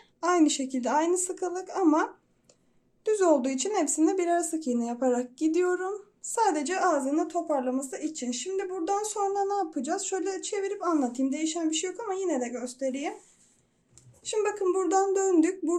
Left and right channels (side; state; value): both; identical; correlation 1.00